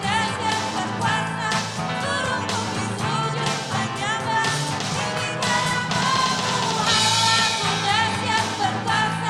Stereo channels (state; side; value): identical; both; correlation 1.00